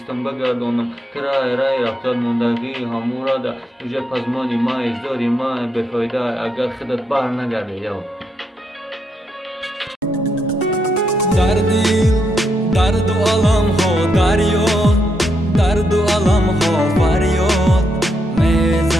بگردانم کرای رای رفتاد موندگی همورا ده اوجه پزمانی ما ازداری ما بفایده اگر خودت بر نگرده یو در دل درد و علم ها دریا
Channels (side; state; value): both; normal; correlation 0.80